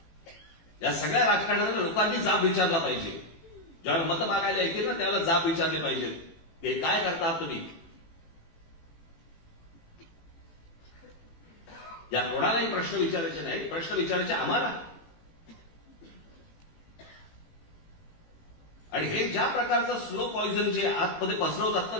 या सगळ्या राजकारणाला लोकांनी जाब विचारला पाहिजे. ज्यावेळेला मतं मागायला येतील ना, त्यावेळेला जाब विचारले पाहिजेत. हे काय करता तुम्ही? या कोणालाही प्रश्न विचारायचे नाही, प्रश्न विचारायचे आम्हाला. आणि हे ज्या प्रकारचं स्लो पॉइझन जे आतमध्ये पसरवतात ना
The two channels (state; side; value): late; right; 18 ms